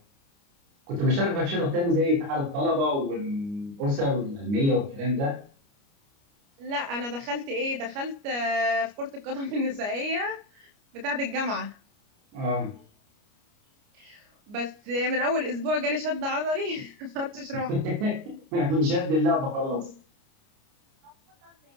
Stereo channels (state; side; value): late; left; 29 ms